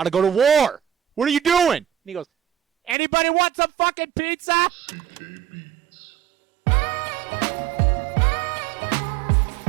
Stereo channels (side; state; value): left; drops out; at 3.0 s